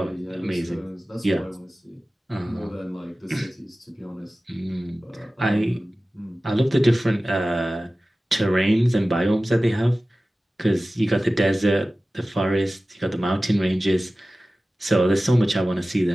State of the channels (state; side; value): normal; both; correlation 0.96